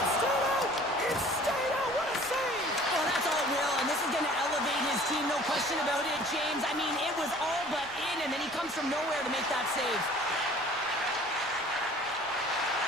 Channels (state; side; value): noise; right; rumble, 24 dB below the sound